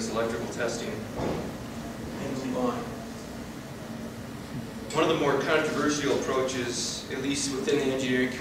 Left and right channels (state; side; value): identical; both; correlation 1.00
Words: electrical testing and move on. One of the more controversial approaches, at least within the engineering